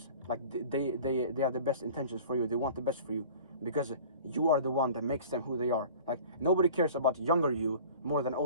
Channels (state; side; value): inverted; both; correlation -0.43